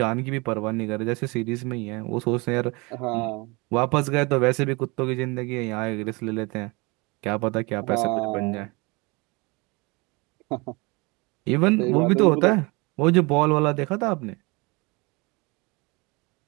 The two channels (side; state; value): left; quieter; 26.8 dB